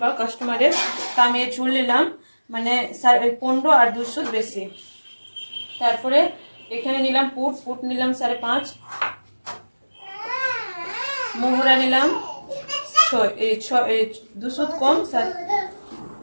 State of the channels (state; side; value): inverted; both; correlation -1.00